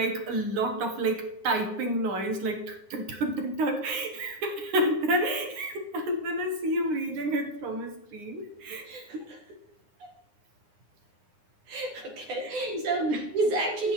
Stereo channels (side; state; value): left; late; 9.7 ms